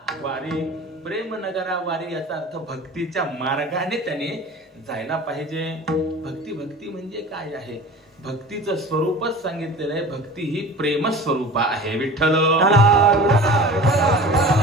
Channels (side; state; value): both; normal; correlation 0.38